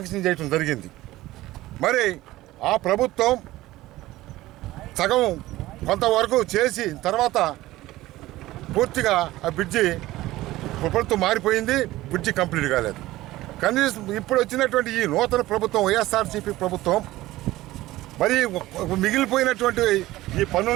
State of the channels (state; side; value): quieter; left; 17.0 dB